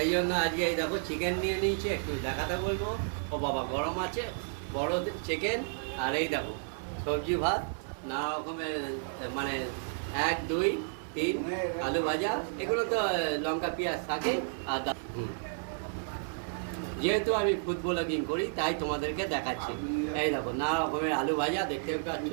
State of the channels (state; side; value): silent; left; digital silence